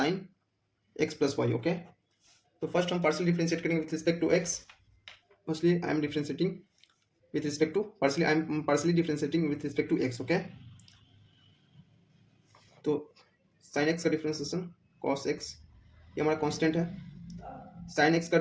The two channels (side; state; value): both; identical; correlation 1.00